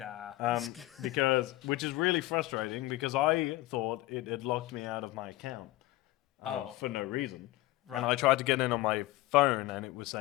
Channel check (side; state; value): right; quieter; 18.1 dB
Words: which is really frustrating because I thought it had locked me out of my account for no reason. Right. And I tried to get in on my phone and it was